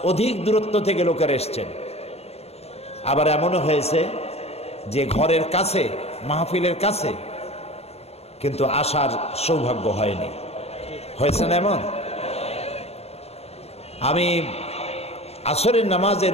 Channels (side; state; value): right; late; 0.30 ms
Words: অধিক দূরত্ব থেকে লোকেরা এসছেন। আবার এমনও হয়েছে যে ঘরের কাছে, মাহফিলের কাছে, কিন্তু আসার সৌভাগ্য হয়নি। হয়েছে না এমন? আমি আসরের